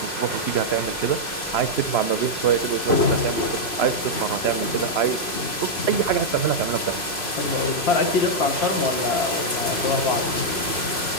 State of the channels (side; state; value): right; late; 3.0 ms